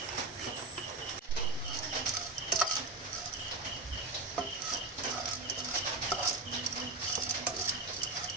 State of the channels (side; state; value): left; quieter; 3.2 dB